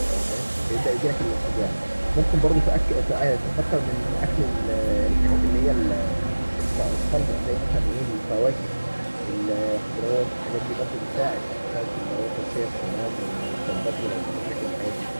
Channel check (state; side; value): inverted; both; correlation -1.00